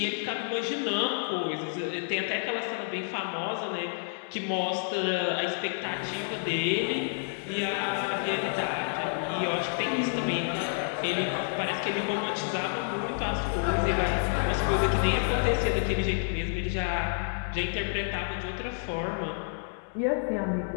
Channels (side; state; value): right; silent; 58 dB below the other